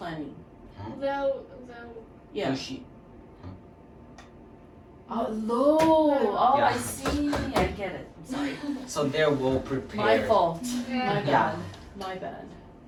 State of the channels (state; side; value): identical; both; correlation 1.00